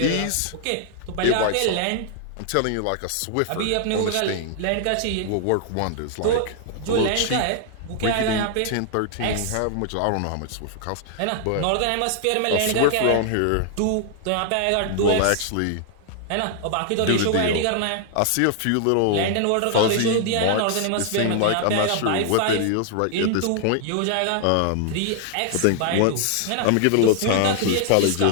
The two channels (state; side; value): different; both; correlation 0.00